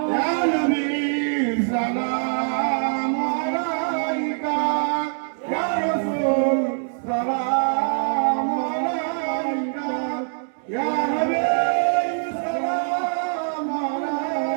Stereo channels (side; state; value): left; silent; digital silence